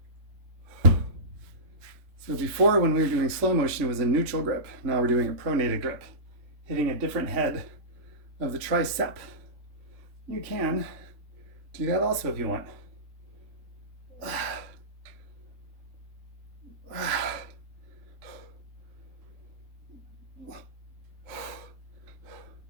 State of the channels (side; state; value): left; late; 3.5 ms